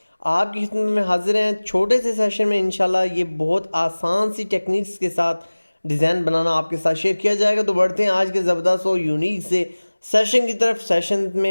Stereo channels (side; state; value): both; inverted; correlation -1.00